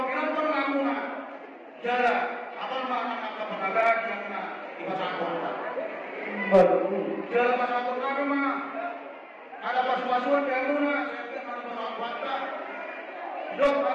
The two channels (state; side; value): identical; both; correlation 1.00